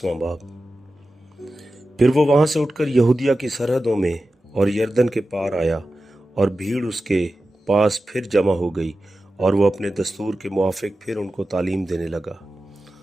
बाब। फिर वो वहाँ से उठकर यहूदिया की सरहदों में और यरदन के पार आया और भीड़ उसके पास फिर जमा हो गई और वो अपने दस्तूर के मुआफ़िक फिर उनको तालीम देने लगा।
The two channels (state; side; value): normal; both; correlation 0.93